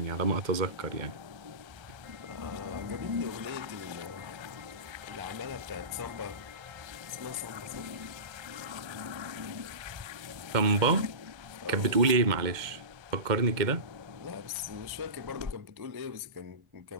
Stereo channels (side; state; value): left; late; 1.3 ms